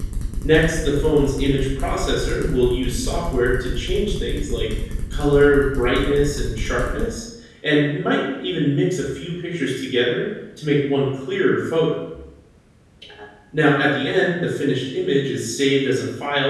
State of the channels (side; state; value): both; identical; correlation 1.00